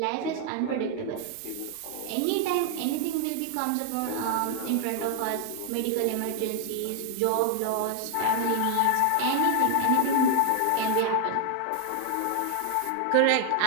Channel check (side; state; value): both; different; correlation 0.00